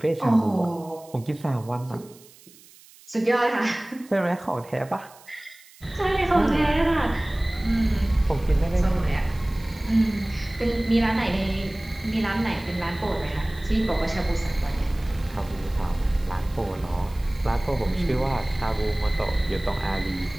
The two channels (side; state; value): right; noise; hiss, 24 dB below the sound